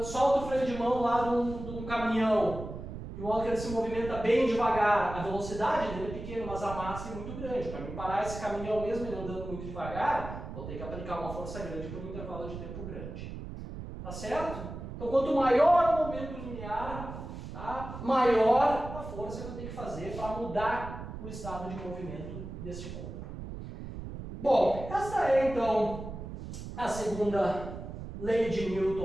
solta o freio de mão lá de um caminhão. De modo que ele se movimenta bem devagar. A velocidade dele é pequena, mas a massa é muito grande. Para me parar esse caminhão mesmo ele andando muito devagar, vou ter que aplicar uma força grande por um intervalo de tempo grande. Tá certo? Então, quanto maior o momento linear, maior a força que eu tenho que fazer para mudar o estado de movimento deste corpo. Bom, essa é então a segunda lei de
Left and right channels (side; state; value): right; noise; rumble, 9 dB below the sound